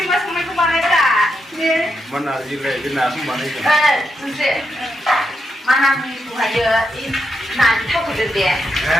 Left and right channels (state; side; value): normal; both; correlation 0.83